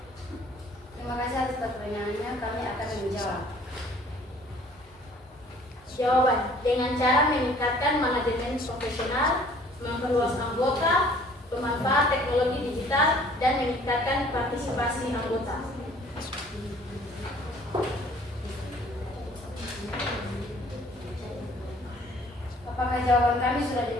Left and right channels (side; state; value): both; normal; correlation 0.54